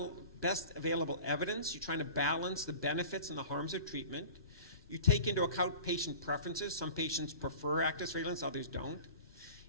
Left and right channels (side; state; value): both; inverted; correlation -0.39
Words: available evidence. You're trying to balance the benefits and the harms of treatment. You take into account patient preferences. Some patients prefer active surveillance, others don't.